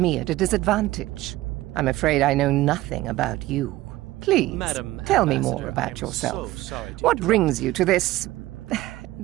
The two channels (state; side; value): quieter; left; 16.9 dB